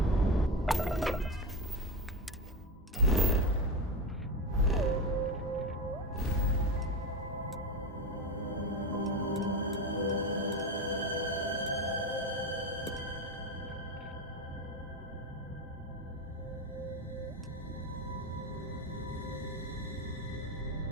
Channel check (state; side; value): normal; both; correlation 0.17